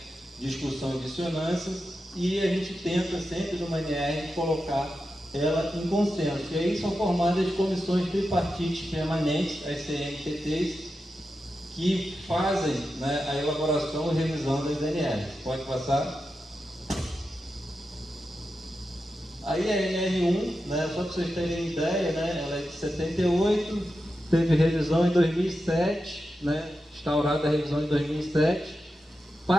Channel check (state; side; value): normal; both; correlation 0.90